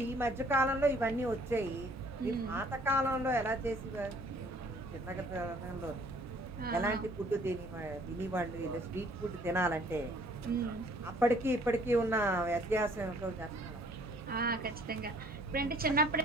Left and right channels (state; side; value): normal; both; correlation 0.58